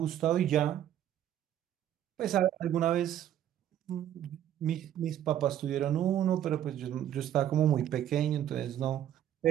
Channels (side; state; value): left; quieter; 11.0 dB